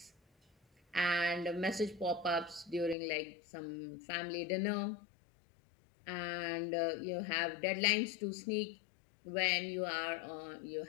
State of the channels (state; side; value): drops out; right; at 3.0 s